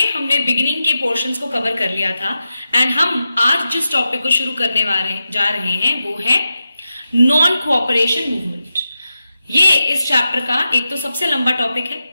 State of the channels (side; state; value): both; inverted; correlation -0.89